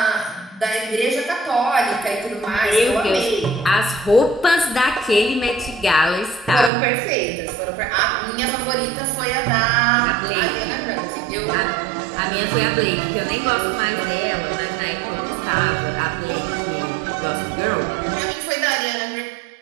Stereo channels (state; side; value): drops out; left; at 6.7 s